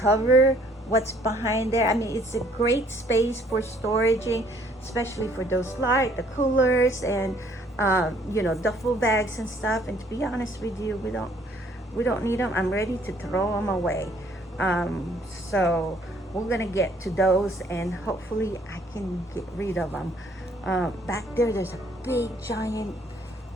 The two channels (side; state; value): both; normal; correlation 0.62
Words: what's behind there. I mean, it's a great space for storaging, especially for those the coolers and you know, duffel bags and stuff. And to be honest with you, we don't need them. I'm ready to throw them away. So we're gonna get to those, and hopefully I can get rid of them. Back there's a big giant